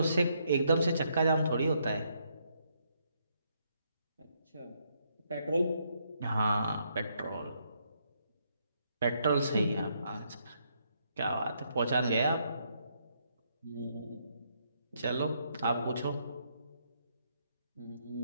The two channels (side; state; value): both; inverted; correlation -0.75